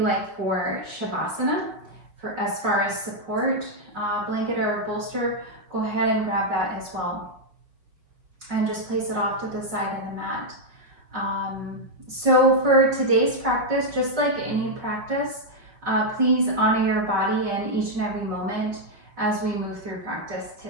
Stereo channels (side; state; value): left; late; 5.6 ms